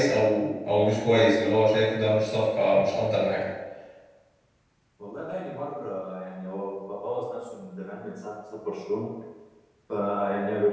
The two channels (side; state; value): both; identical; correlation 1.00